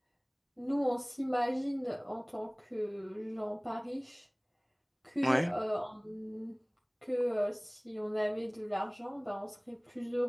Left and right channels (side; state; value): both; identical; correlation 1.00